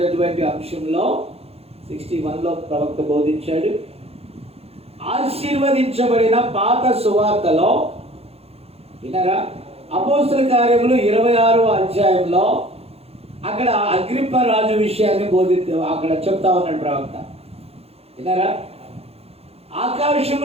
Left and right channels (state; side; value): late; left; 0.29 ms